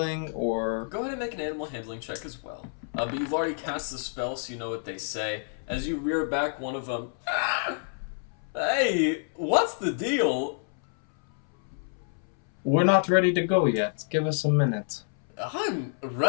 or... Go ahead and make an animal handling check as well. But you've already cast the spell, so you know what they say. As you rear back one of them, hey, what's the deal? We're not ready to go yet. Give us a minute. I'm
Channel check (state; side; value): silent; right; 59 dB below the other